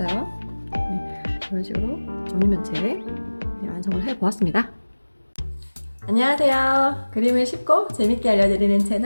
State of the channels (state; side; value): inverted; both; correlation -1.00